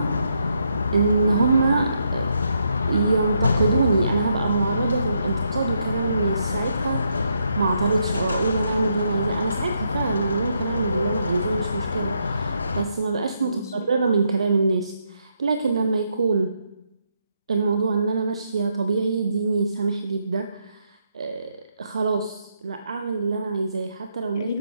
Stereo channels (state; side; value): inverted; both; correlation -0.78